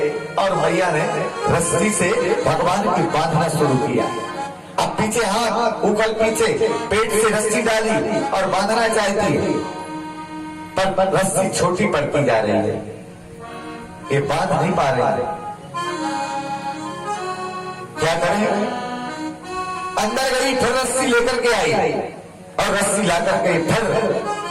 और मैया ने रस्सी से भगवान की बांधना शुरू किया। अब पीछे हाथ, ऊखल पीछे, पेट से रस्सी डाली और बांधना चाहती है, पर रस्सी छोटी पड़ती जा रही है, ये बांध नहीं पा रहे। क्या करें? अंदर गई, फिर रस्सी लेकर के आई और रस्सी ला करके फिर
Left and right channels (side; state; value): both; identical; correlation 1.00